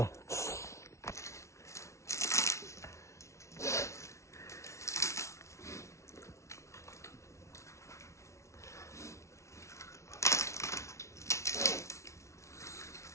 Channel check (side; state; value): right; late; 0.14 ms